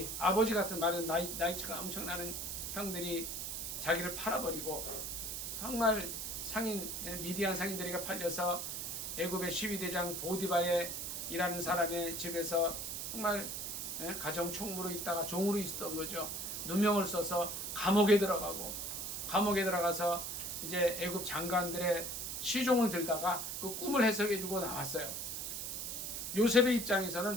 아버지 같은 말은 나이차가 엄청나는 형들이 자기를 팔아버리고 정말 미디안 상인들에게 팔려서 애굽의 시위대장 보디바에 일하는 사람의 집에서 정말 가정 총무로 있다가 종으로 있었던 거죠. 누명을 써서 감옥에 들어가서 이제 애굽 장관들의 시종을 들다가 그 꿈을 해석해주고 나왔어요. 요셉의 입장에서는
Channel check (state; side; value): noise; right; hiss, 4 dB below the sound